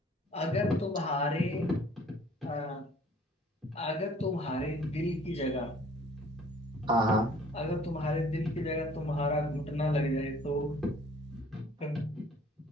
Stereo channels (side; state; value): both; normal; correlation 0.54